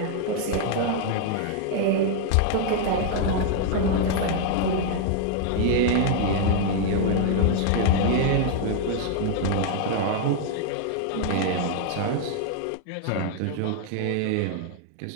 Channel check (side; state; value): both; different; correlation 0.00